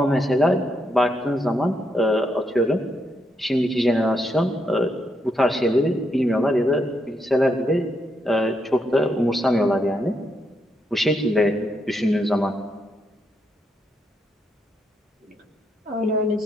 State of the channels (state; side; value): normal; both; correlation 0.79